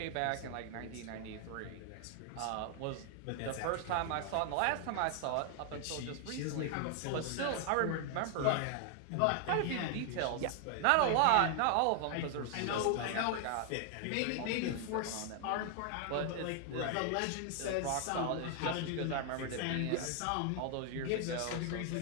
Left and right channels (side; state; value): both; different; correlation 0.00